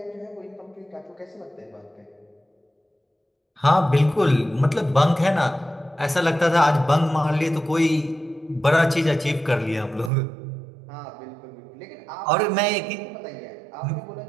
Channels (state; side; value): drops out; left; at 10.1 s